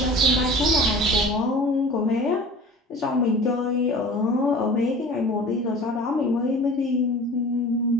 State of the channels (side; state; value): both; normal; correlation 0.41